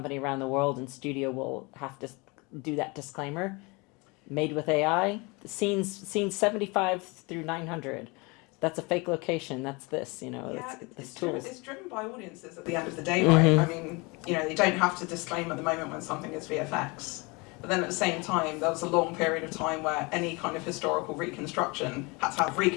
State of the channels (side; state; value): right; quieter; 27.3 dB